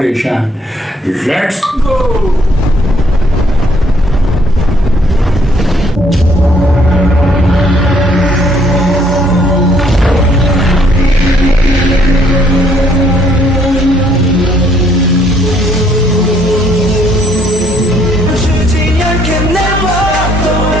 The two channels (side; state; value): both; normal; correlation 0.66